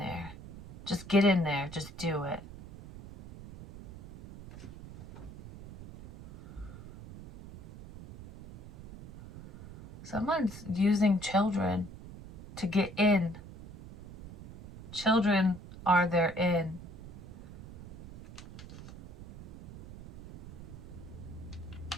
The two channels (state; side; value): noise; right; rumble, 15 dB below the sound